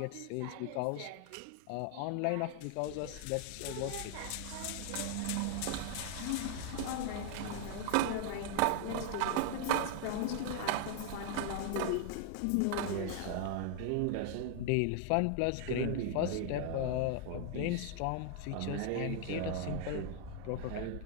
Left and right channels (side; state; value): both; different; correlation 0.00